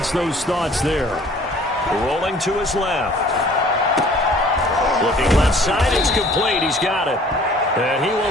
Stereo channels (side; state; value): both; normal; correlation 0.53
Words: those thoughts there. Rolling to his left. Looking left side, it's complete. He's got it. And he